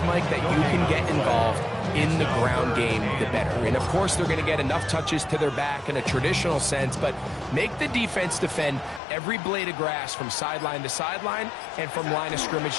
Mike, that you can get involved in the ground game, the better. And, of course, they're going to get enough touches to their back in a traditional sense, but make the defense defend every blade of grass from sideline to sideline and from line of scrimmage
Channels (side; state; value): right; drops out; at 9.0 s